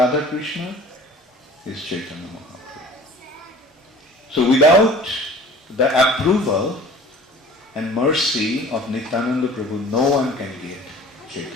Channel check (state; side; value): normal; both; correlation 0.45